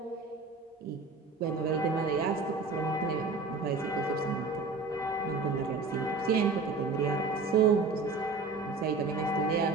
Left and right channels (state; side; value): quieter; left; 3.9 dB